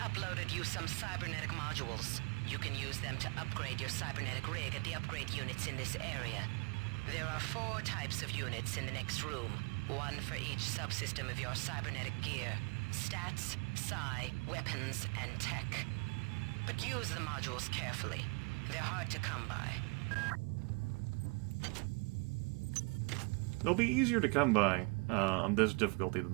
you some cybernetic modules. You can use them to upgrade your cybernetic rig at the upgrade units in this area. There are 4 types of units in the next room. 1 for each subsystem of your cybernetic gear. Stats, psi, weapons, and tech. But use the modules carefully. They're hard to come by. They'll be easier to come by on this difficulty than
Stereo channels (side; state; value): left; quieter; 30.4 dB